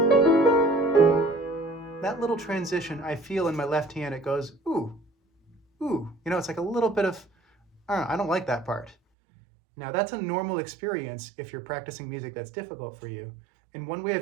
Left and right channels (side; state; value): left; drops out; at 9.0 s